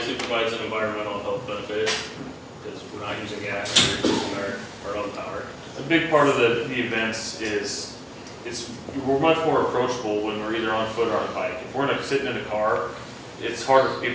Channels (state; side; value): identical; both; correlation 1.00